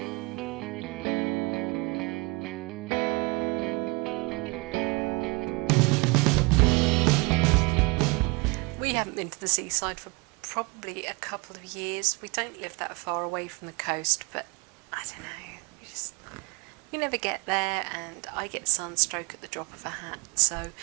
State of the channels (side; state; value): left; quieter; 28.0 dB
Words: We haven't been to the seaside for probably a couple of years. We don't live that far away from the coast, but I don't know, we never get there, and I get sunstroke at the drop of a hat, so